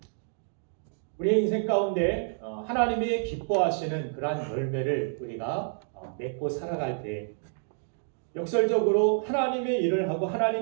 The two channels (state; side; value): silent; left; digital silence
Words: 우리의 인생 가운데 하나님이 기뻐하시는 그러한 열매를 우리가 맺고 살아갈 때 역설적으로 하나님의 일을 하고